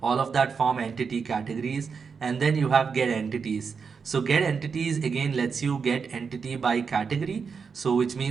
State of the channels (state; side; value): quieter; left; 5.7 dB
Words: all of that form entity categories. And then you have get entities. So get entities again lets you get entity by category, so which